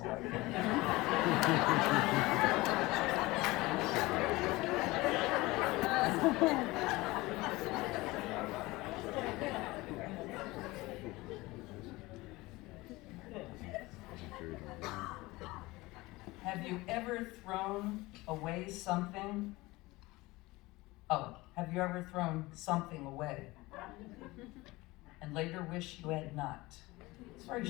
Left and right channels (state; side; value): quieter; right; 20.9 dB